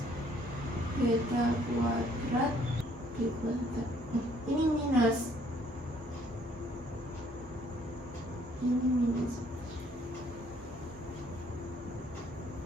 beta kuadrat B kuadrat. Ini minus,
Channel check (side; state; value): both; normal; correlation 0.63